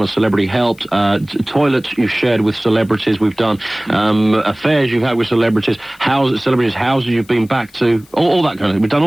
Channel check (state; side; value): noise; left; hiss, 28 dB below the sound